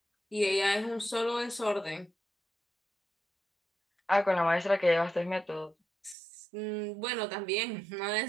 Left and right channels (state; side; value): drops out; left; at 6.2 s